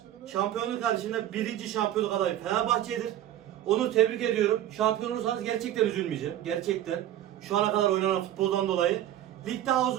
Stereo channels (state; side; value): quieter; left; 12.3 dB